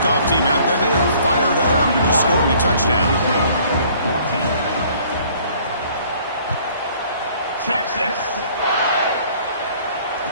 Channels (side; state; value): both; inverted; correlation -0.56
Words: team out there, they are fired up after just scoring a touchdown. 14. Texas.